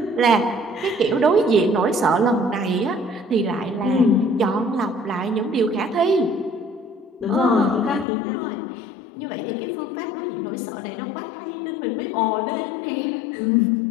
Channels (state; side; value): drops out; right; at 8.1 s